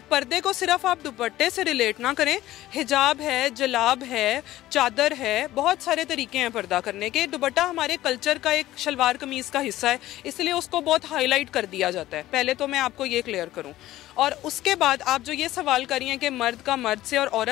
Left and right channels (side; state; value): right; quieter; 15.3 dB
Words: पर्दे को सिर्फ आप दुपट्टे से रिलेट ना करें, हिजाब है, जलाब है, चादर है, बहुत सारे तरीके हैं पर्दा करने के। दुपट्टा हमारे कल्चर का एक शलवार कमीज़ का हिस्सा है, इसलिए उसको बहुत हाईलाइट कर दिया जाता है। पहले तो मैं आपको ये क्लियर करूं, और उसके बाद आप जो ये सवाल करी हैं कि मर्द का मर्द से और